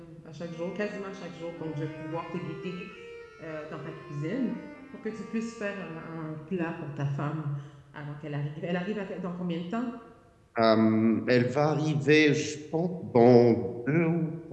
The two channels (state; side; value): identical; both; correlation 1.00